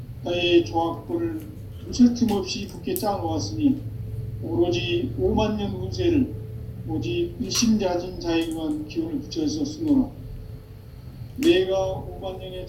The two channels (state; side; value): identical; both; correlation 1.00